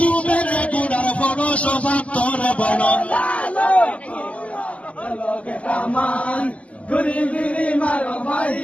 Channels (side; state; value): right; late; 0.064 ms